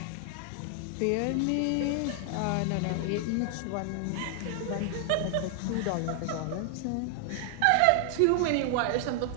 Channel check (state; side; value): different; both; correlation 0.00